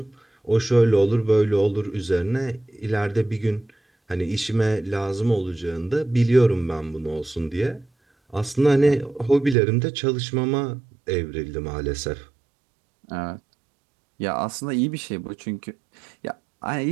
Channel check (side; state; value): left; drops out; at 9.6 s